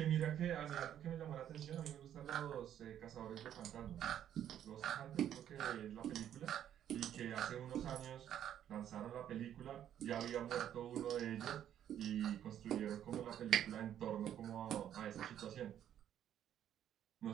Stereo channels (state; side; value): quieter; left; 10.4 dB